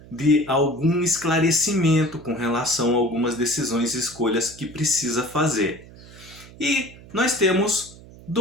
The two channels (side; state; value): right; noise; hum, 20 dB below the sound